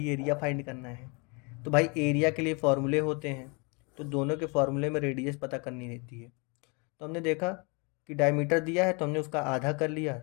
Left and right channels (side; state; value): right; quieter; 31.8 dB